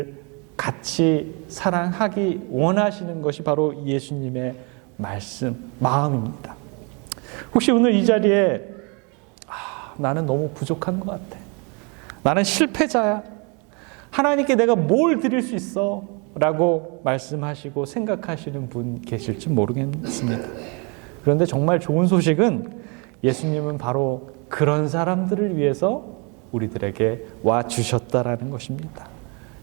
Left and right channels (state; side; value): quieter; left; 32.6 dB